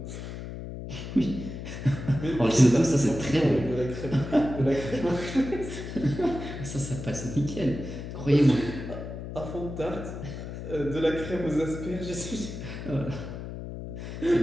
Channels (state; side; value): noise; left; hum, 8 dB below the sound